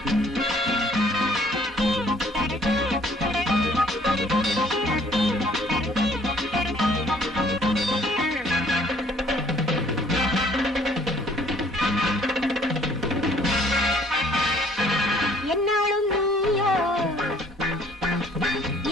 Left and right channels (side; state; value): both; normal; correlation 0.59